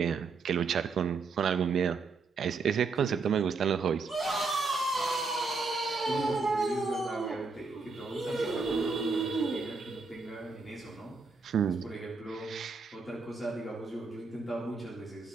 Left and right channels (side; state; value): left; quieter; 4.4 dB